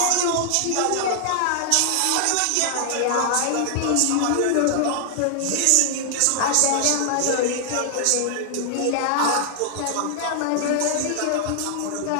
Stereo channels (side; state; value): both; different; correlation -0.01